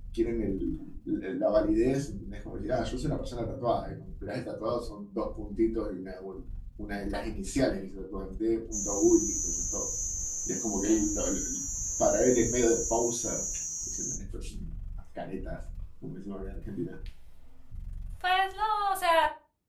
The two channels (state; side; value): identical; both; correlation 1.00